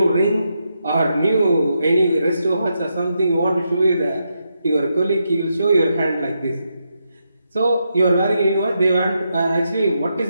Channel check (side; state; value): both; inverted; correlation -0.83